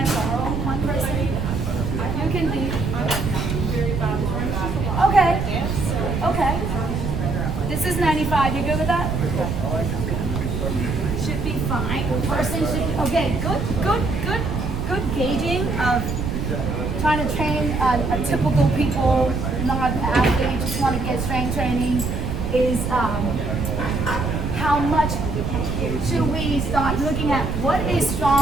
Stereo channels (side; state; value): right; noise; rumble, 3 dB below the sound